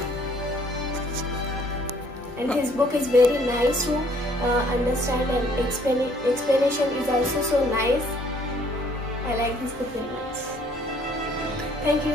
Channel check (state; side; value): normal; both; correlation 0.61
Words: And his book is very nice to understand, and explanation is also so nice. I like this book very much. Thank